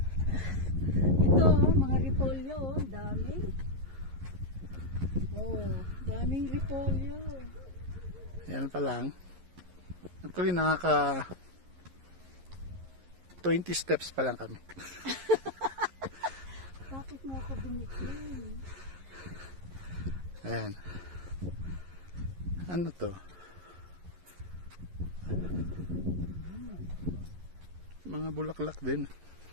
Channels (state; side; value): late; left; 11 ms